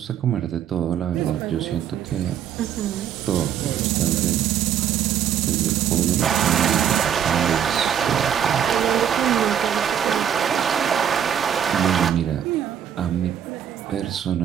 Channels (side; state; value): left; quieter; 9.1 dB